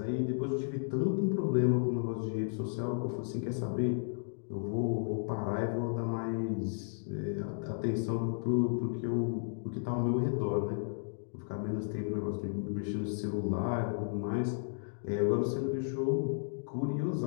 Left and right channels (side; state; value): right; silent; digital silence